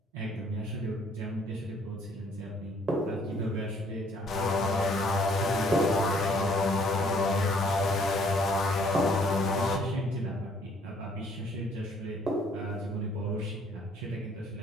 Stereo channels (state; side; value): normal; both; correlation 0.62